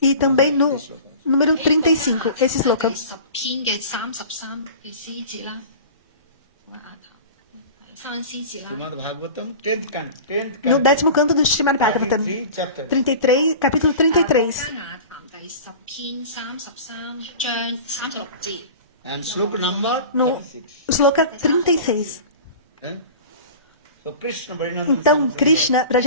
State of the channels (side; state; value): both; inverted; correlation -0.37